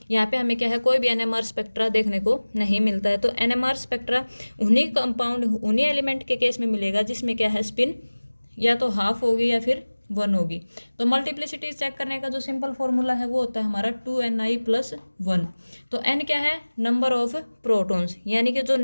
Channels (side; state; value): both; inverted; correlation -1.00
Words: यहाँ पे हमें क्या है, कोई भी एनएमआर स्पेक्ट्रा देखने को नहीं मिलता है। तो एनएमआर स्पेक्ट्रा उन्हीं कंपाउंड उन्हीं एलिमेंट के केस में मिलेगा जिसमें क्या है, स्पिन या तो हाफ होगी या फिर 1 होगी। तो मल्टीप्लिसिटी चेक करने का जो सिंपल फॉर्मूला है वो होता है हमारा 2ni+1। तो n क्या है? नंबर ऑफ प्रोटॉन्स, यानी कि जो